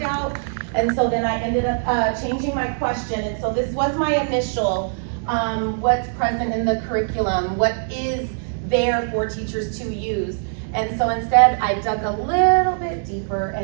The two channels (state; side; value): silent; left; digital silence